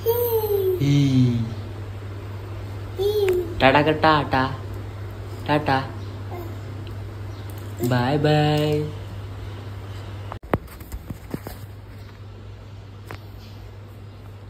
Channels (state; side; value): identical; both; correlation 1.00